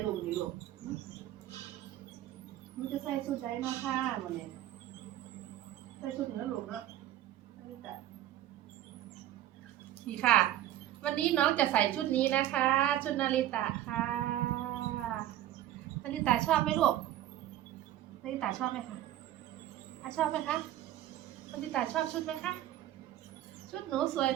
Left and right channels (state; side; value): quieter; left; 13.0 dB